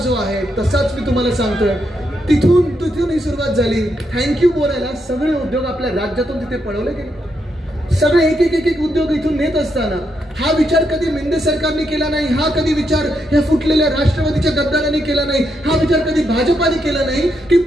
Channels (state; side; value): normal; both; correlation 0.80